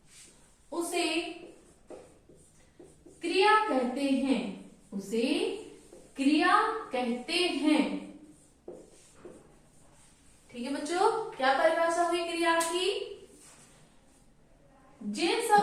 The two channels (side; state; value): both; identical; correlation 1.00